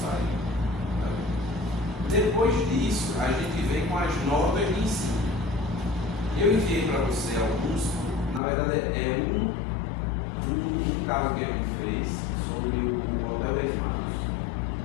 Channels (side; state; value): right; drops out; at 8.4 s